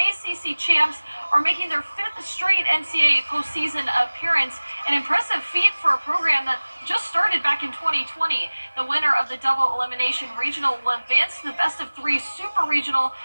ACC champs are making their 5th straight NCAA postseason appearance, an impressive feat for a program that just started back in 2020. The winner of the double elimination regional will advance to the best-of-3 super regional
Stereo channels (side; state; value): both; inverted; correlation -1.00